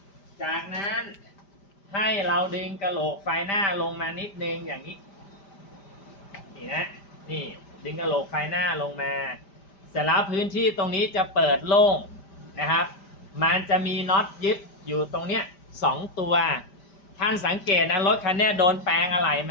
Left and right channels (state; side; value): late; right; 5.1 ms